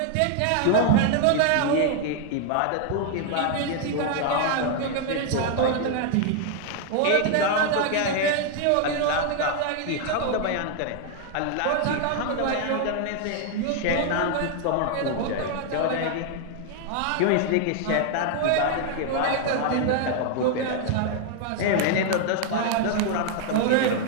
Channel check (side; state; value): both; different; correlation 0.00